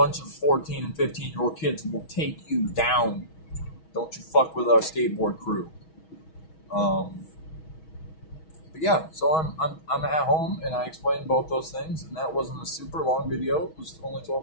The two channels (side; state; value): right; late; 6.3 ms